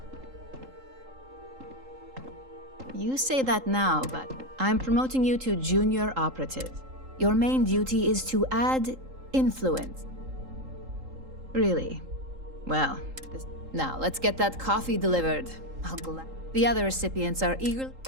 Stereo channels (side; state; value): left; late; 3.8 ms